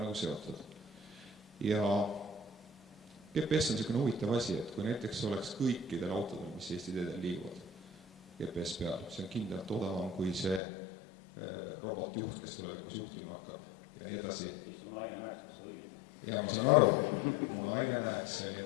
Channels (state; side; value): drops out; right; at 10.6 s